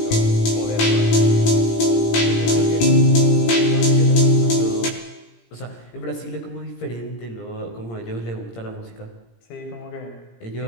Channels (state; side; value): late; right; 17 ms